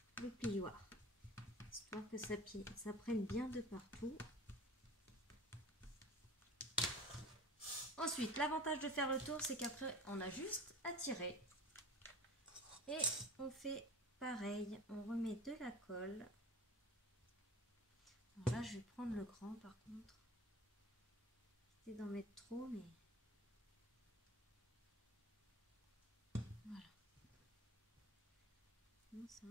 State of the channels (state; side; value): normal; both; correlation 0.37